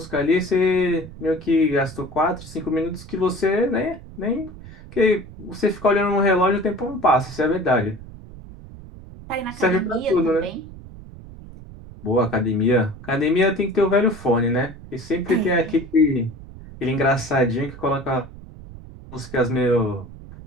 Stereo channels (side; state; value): right; noise; rumble, 16 dB below the sound